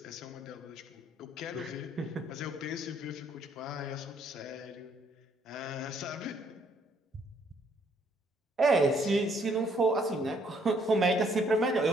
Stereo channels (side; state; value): both; normal; correlation 0.67